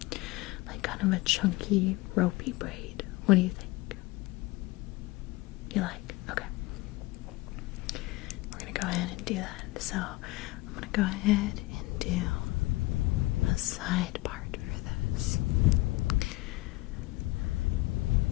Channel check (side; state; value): right; quieter; 20.5 dB